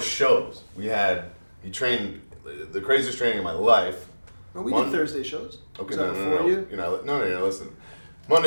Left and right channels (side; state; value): both; inverted; correlation -1.00